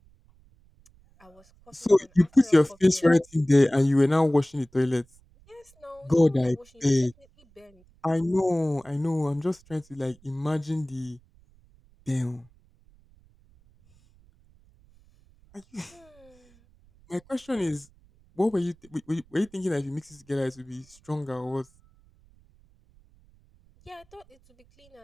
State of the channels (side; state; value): right; noise; rumble, 30 dB below the sound